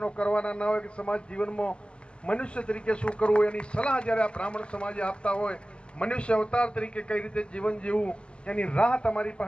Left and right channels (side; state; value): right; late; 0.051 ms